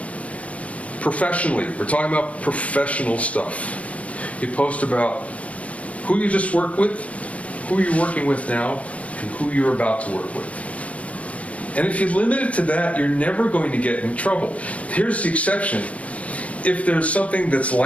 professionally. We're talking about professional stuff. You post about who you just worked with, who you're working with now, and who you're about to work with. And if you limit it to that, you're never going to get in trouble. Here's the exception. If there's something that's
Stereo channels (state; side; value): late; right; 0.065 ms